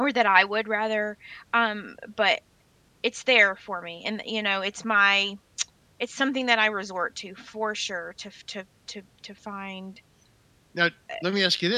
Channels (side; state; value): both; identical; correlation 1.00